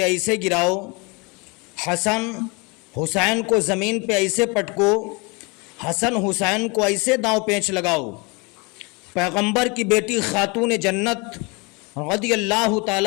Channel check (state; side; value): quieter; right; 28.8 dB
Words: ایسے گراؤ، حسن حسین کو زمین پہ ایسے پٹکو، حسن حسین کو ایسے داؤں پیچ لگاؤ۔ پیغمبر کی بیٹی خاتون جنت رضی اللہ